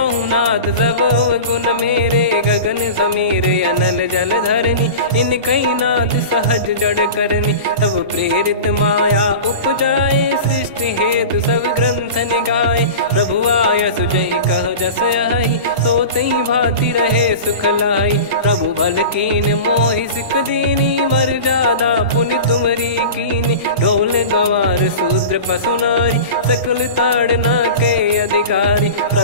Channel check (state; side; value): inverted; both; correlation -0.33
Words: नाथ सब गुण मेरे गगन समीर अनल जल धरनी इन कई नाथ सहज जड़ करनी तब प्रेरित माया उपजाए सृष्टि हेतु सब ग्रंथ निगाए प्रभु आय सुजय कह जस आई तो तई भांति रहे सुख लाई प्रभु बल कीन मोहि सिख दीनी मर जादा पुनि तुमरी कीनी ढोल गवार सूत्र पशु नारी सकल ताड़ना के अधिकारी।